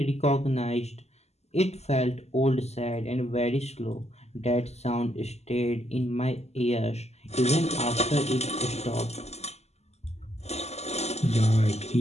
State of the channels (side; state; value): right; late; 0.31 ms